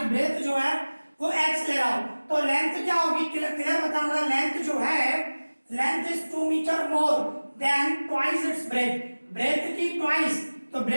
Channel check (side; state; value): both; inverted; correlation -1.00